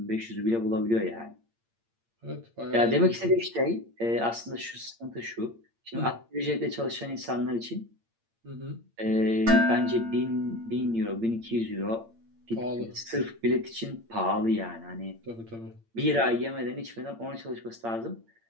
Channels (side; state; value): left; late; 8.7 ms